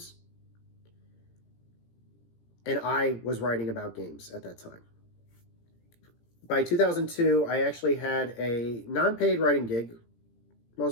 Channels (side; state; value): right; late; 17 ms